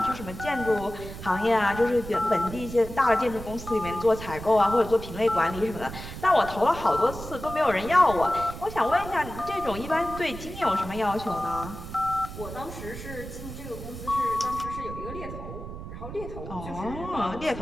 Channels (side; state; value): right; noise; rumble, 10 dB below the sound